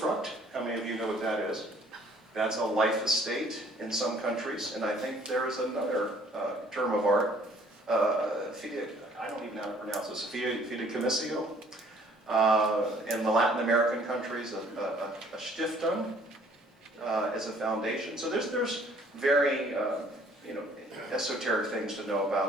How many of you know what that is? That's a life estate in some countries, and I think there is another term of art, I don't even know how to pronounce this, fideicommissio. In the Latin American countries, a Stiftung as a foundation. So there's very esoteric things to know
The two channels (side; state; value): both; normal; correlation 0.58